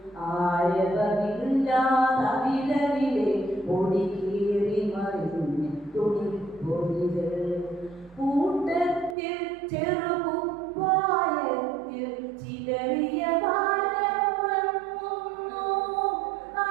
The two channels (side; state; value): left; drops out; at 9.2 s